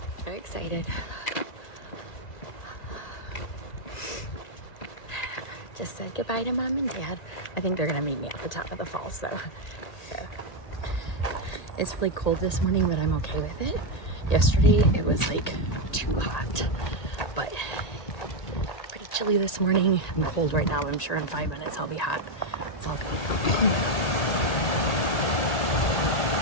Very excited. Just said goodbye to Mom and Dad. I think they're gonna meet me at the top of the falls though. So it's really cold this morning, but I'm okay with it. Yesterday it was like too hot, but pretty chilly this morning. I'm cold right now, but I'm sure in 5 minutes I'll be hot. It's all good.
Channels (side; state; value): right; late; 1.8 ms